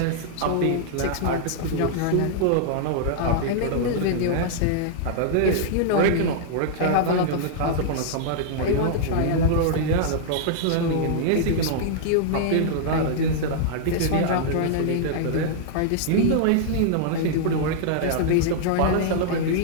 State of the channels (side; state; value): both; different; correlation -0.01